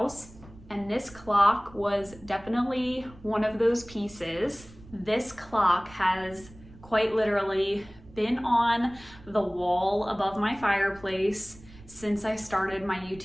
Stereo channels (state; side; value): noise; right; rumble, 21 dB below the sound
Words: and this clock was definitely one of those pieces. This clock has quite literally been on the wall above my fireplace since I started my